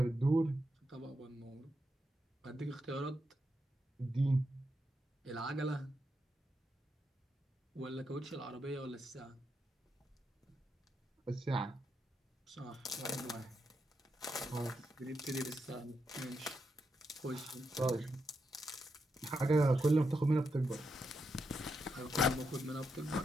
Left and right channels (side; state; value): both; normal; correlation 0.84